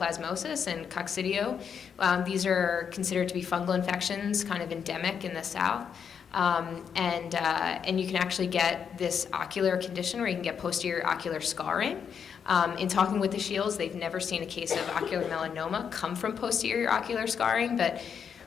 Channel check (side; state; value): right; quieter; 7.2 dB